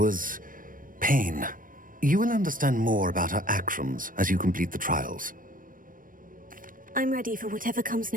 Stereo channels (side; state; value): left; late; 0.40 ms